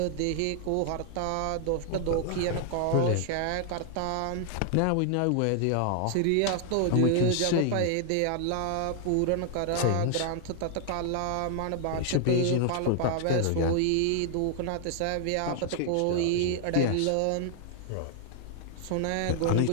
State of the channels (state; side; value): different; both; correlation 0.00